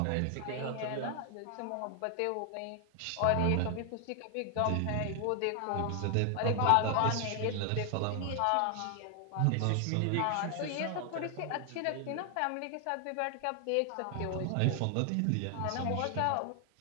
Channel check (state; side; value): different; both; correlation 0.00